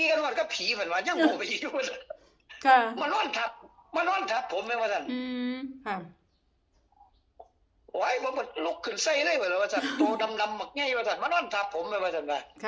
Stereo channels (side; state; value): both; identical; correlation 1.00